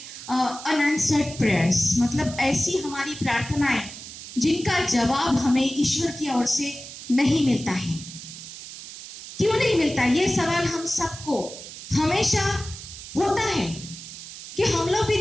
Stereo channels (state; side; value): noise; right; hiss, 13 dB below the sound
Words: अनआंसर्ड प्रेयर्स, मतलब ऐसी हमारी प्रार्थनाएं जिनका जवाब हमें ईश्वर की ओर से नहीं मिलता है। क्यों नहीं मिलता? ये सवाल हम सबको हमेशा होता है कि हम लोग